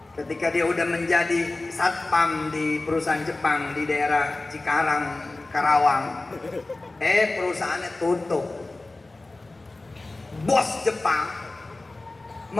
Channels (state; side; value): quieter; right; 3.0 dB